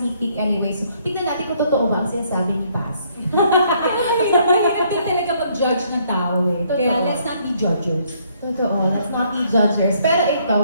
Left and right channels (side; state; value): both; inverted; correlation -0.67